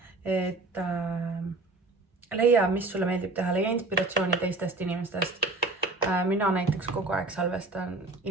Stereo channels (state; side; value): quieter; left; 3.3 dB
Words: Et leia, mis sulle meeldib teha, leia inspiratsiooni teistest inimestest. Mina näiteks kogu aeg salvestan